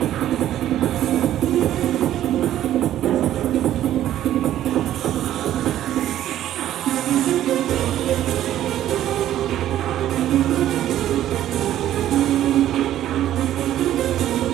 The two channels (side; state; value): left; quieter; 12.3 dB